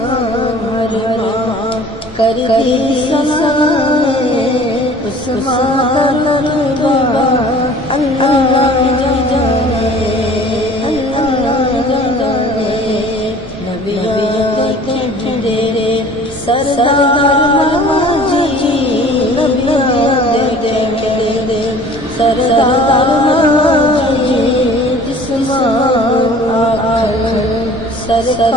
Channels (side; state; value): both; normal; correlation 0.47